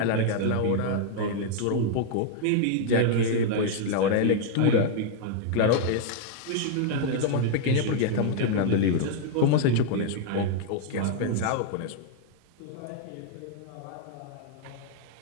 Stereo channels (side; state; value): both; different; correlation -0.01